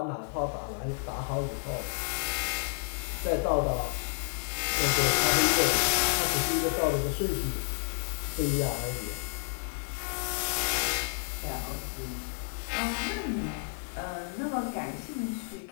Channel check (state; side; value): silent; right; 55 dB below the other